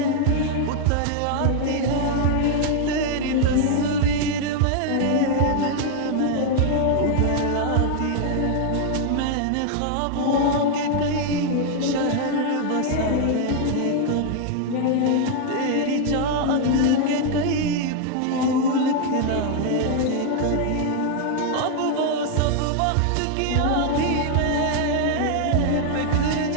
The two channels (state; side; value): different; both; correlation 0.00